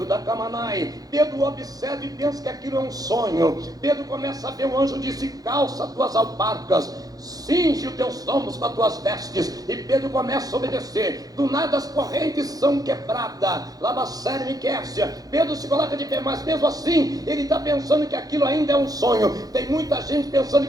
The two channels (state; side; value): late; left; 0.18 ms